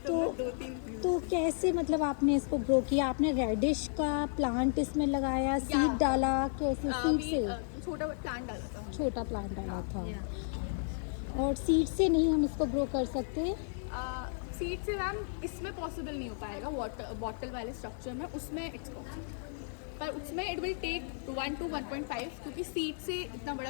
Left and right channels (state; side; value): silent; right; digital silence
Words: तो 2-3. तो कैसे, मतलब आपने इसको ग्रो किया? आपने रेडिश का प्लांट इसमें लगाया, सीड डाला, कैसे? सीड से छोटा प्लांट डाला था. छोटा प्लांट डाला था. और सीड से नहीं हम इसको ग्रो कर सकते? सीड से मैम इसमें पॉसिबल नहीं हो पाएगा, वाटर बॉटल वाले स्ट्रक्चर में, उसमें इट्स पॉसिबल, पर उसमें इट विल टेक 1 to 1.5, क्योंकि सीड से इतना बड़ा